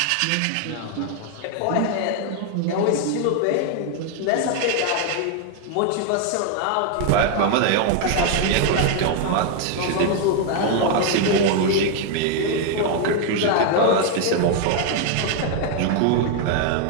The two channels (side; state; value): both; different; correlation 0.00